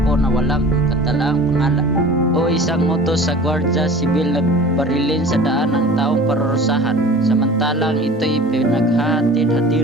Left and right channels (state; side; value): normal; both; correlation 0.42